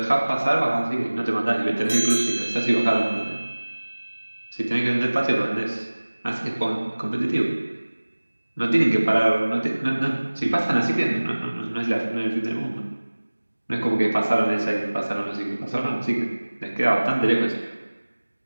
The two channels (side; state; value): both; inverted; correlation -1.00